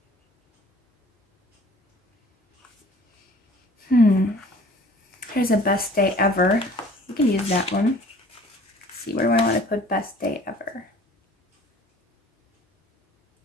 Here's a best day ever. We can use that one. Let's see, where do I want to put best day ever?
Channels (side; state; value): both; normal; correlation 0.51